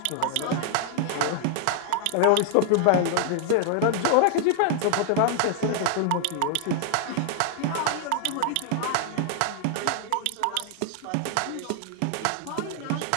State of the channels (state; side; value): different; both; correlation 0.00